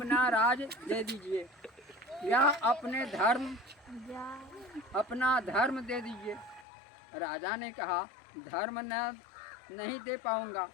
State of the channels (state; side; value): drops out; right; at 6.7 s